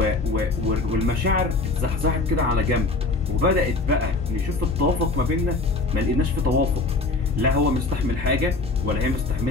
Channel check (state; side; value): quieter; right; 3.4 dB